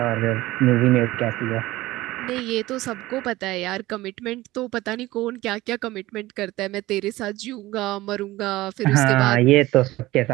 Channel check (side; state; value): left; quieter; 18.1 dB